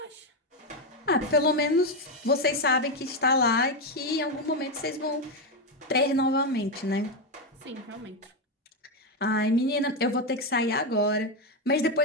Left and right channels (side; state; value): both; normal; correlation 0.08